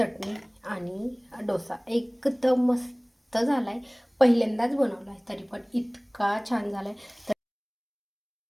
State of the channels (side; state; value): both; identical; correlation 1.00